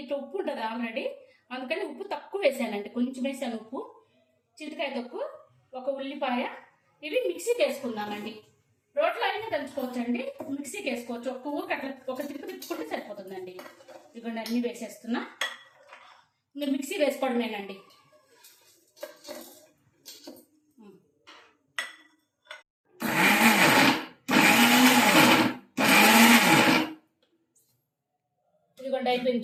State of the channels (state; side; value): identical; both; correlation 1.00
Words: ఉప్పు ఉంటుంది ఆల్రెడీ, అందుకని ఉప్పు తక్కువ వేసానండి. కొంచెం వేసాను ఉప్పు. చింతకాయ తొక్కు, ఒక ఉల్లిపాయ. ఇవి మిక్సీకి వేసుకుందామండి. రోట్లో అయినా దంచుకోవచ్చండి, మిక్సీకి వేసుకోవచ్చు. ఒక్క ఊరికి అట్లా ఒక తిరుపు తిప్పుకుంటే సరిపోతుందండి. ఇదిగోండి, అన్నీ వేసేస్తున్నా. మీరు మిక్సీ వేసుకోవడమేనండి. ఇదిగోండి,